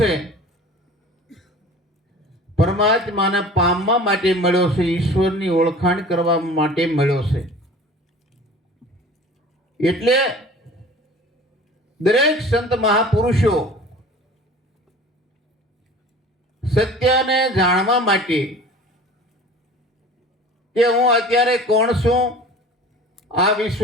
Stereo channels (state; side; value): normal; both; correlation 0.43